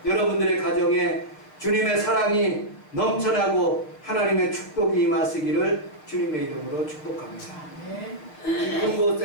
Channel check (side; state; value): right; late; 6.8 ms